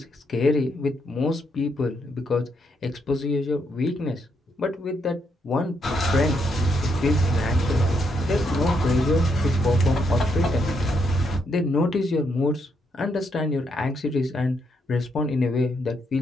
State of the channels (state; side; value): normal; both; correlation 0.77